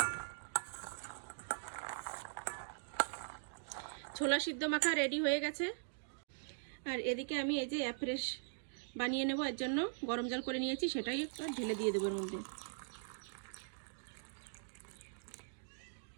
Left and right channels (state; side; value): silent; left; digital silence